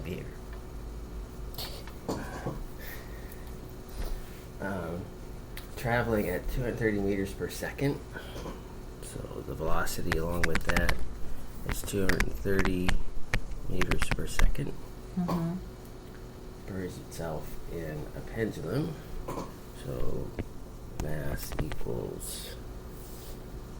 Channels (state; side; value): identical; both; correlation 1.00